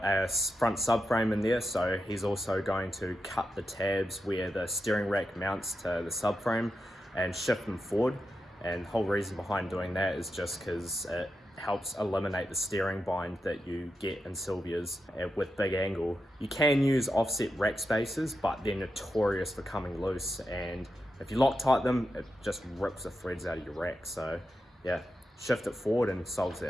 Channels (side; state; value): both; normal; correlation 0.88